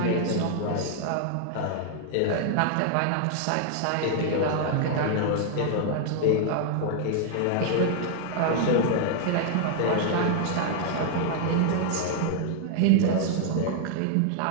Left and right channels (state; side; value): different; both; correlation 0.00